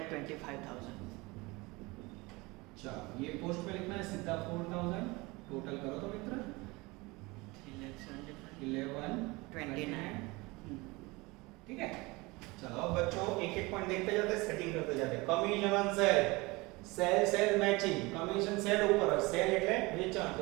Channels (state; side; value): quieter; left; 23.8 dB